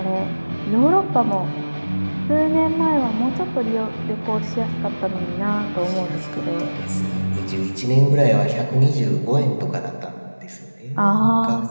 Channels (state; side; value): inverted; both; correlation -1.00